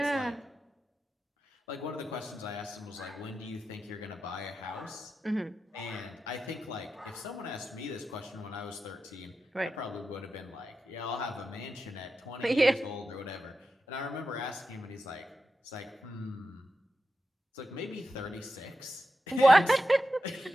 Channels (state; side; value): normal; both; correlation 0.90